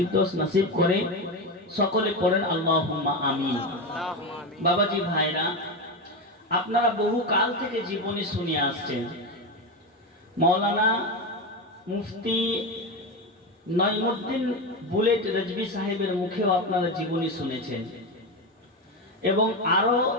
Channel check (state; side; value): normal; both; correlation 0.16